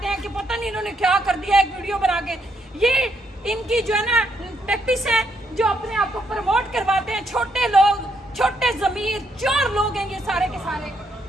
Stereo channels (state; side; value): normal; both; correlation 0.75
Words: हैं कि पता नहीं इन्होंने क्या कर दिया एक वीडियो बना के। ये इनकी जो है ना टैक्टिस है, जो अपने आप को प्रमोट करवाते हैं। छोटे लोग, छोटे जमीर, चोर लोग हैं ये सारे के सारे।